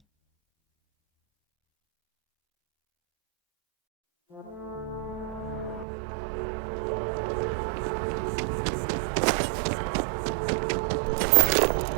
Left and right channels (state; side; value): drops out; left; at 5.9 s